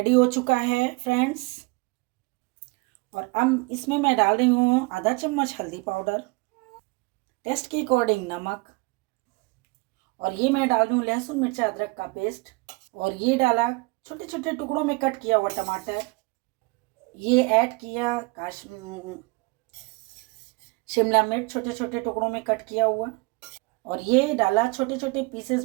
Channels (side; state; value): left; quieter; 27.3 dB